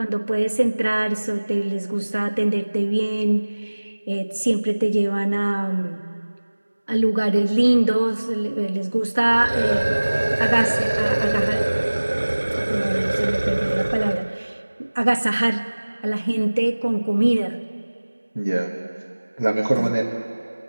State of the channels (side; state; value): both; inverted; correlation -1.00